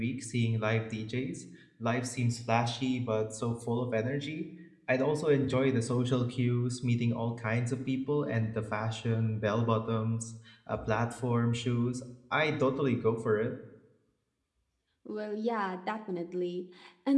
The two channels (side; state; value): both; identical; correlation 1.00